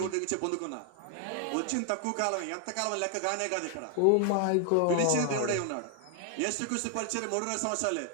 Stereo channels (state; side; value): different; both; correlation 0.00